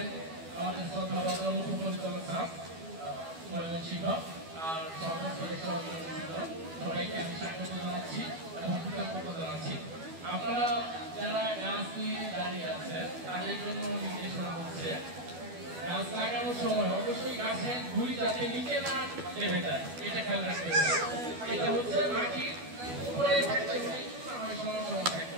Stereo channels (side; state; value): left; late; 12 ms